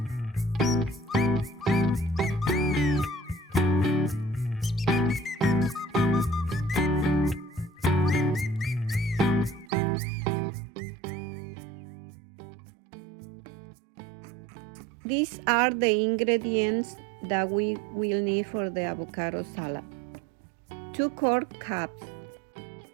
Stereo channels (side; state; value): left; drops out; at 9.7 s